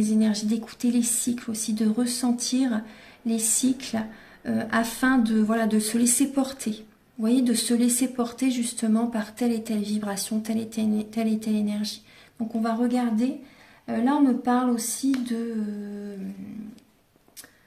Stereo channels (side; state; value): both; identical; correlation 1.00